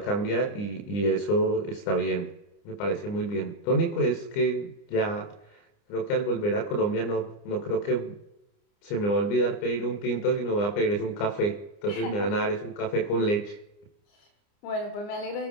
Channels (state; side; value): late; right; 29 ms